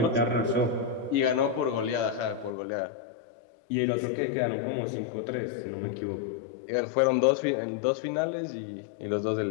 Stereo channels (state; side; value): drops out; right; at 2.5 s